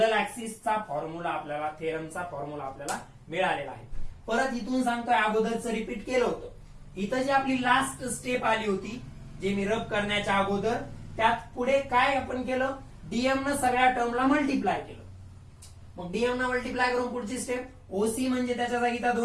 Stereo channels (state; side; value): identical; both; correlation 1.00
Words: ऍक्सिसचा फॉर्म्युला आपल्याला थेरमचा फॉर्म्युला आपल्याला मिळालेला आहे. परत इथून सांगतोय अगोदरचं रिपीट केलं होतं. इथं जी आपली लास्ट स्टेप आली होती जे मी रब करण्याच्या अगोदर त्यात पुढे काय आपण केलं डीएम न सगळ्या टर्मला मल्टिप्लाय केलं. मग डीएम न मल्टिप्लाय करून पुढची स्टेप ओसी म्हणजे त्याच्या जागी त्या